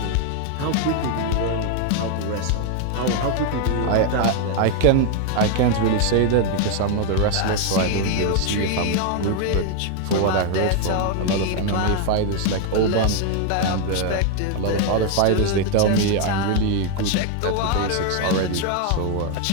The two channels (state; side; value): different; both; correlation 0.00